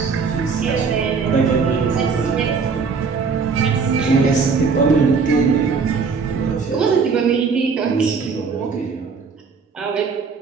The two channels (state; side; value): quieter; left; 5.2 dB